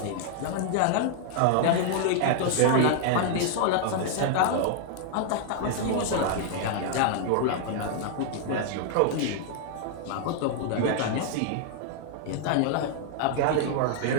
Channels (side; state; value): both; different; correlation -0.01